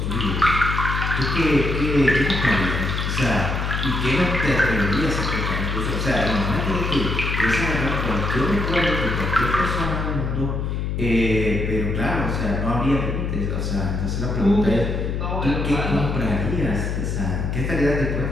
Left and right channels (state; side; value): noise; left; hum, 1 dB below the sound